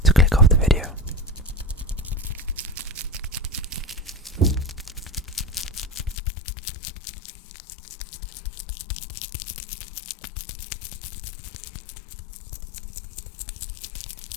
to click off the video.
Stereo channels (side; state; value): right; drops out; at 6.2 s